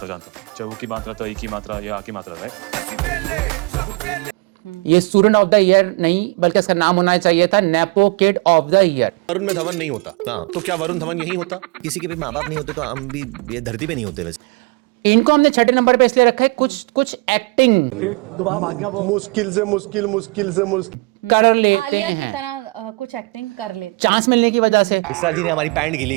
चाहे की मात्रा तो की मात्रा या आ की मात्रा, राइट? ये स्टूडेंट ऑफ द ईयर नहीं, बल्कि इसका नाम होना चाहिए था nepo kid of the year. Varun में धवन नहीं होता तो क्या वरुण धवन यही होता? किसी के भी माँ बाप नहीं होते तो हम भी ये धरती पे नहीं होते। वैसे इनको हमने छठे नंबर पे इसलिए रखा है, कुछ एक्टिंग मुश्किल से कर लेते आलिया हैं। की तरह कुछ एक्टिंग कर लेते चांस मिलने की वजह से। विशाल जी ने हमारी पैंट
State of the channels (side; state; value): left; quieter; 27.6 dB